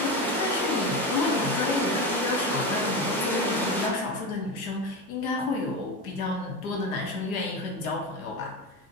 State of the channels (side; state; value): both; normal; correlation 0.21